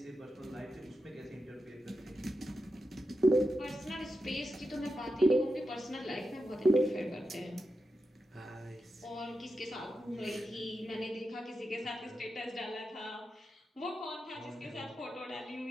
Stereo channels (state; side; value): normal; both; correlation 0.89